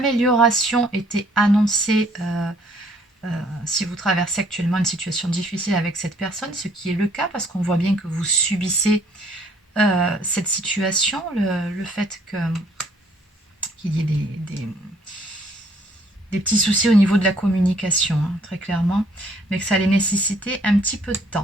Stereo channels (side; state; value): both; normal; correlation 0.63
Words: était annoncée si vous traversez actuellement une situation difficile avec cette personne, ce qui est le cas parce qu'on voit bien que vous subissez cette situation, le fait qu'il y ait des petits soucis au niveau de la communication, hein, très clairement, mais que ça allait nécessiter un petit peu de